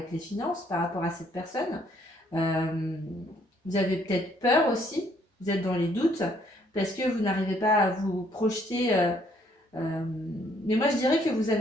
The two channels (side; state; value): both; normal; correlation 0.66